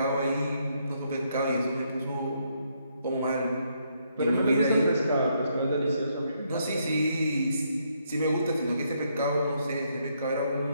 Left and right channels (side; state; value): both; inverted; correlation -0.74